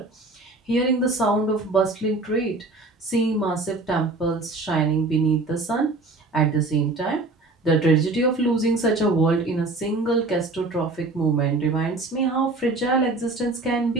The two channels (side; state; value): left; quieter; 3.2 dB